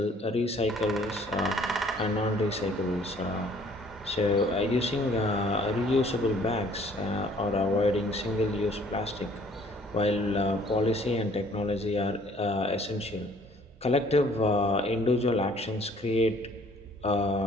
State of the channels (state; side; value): normal; both; correlation 0.57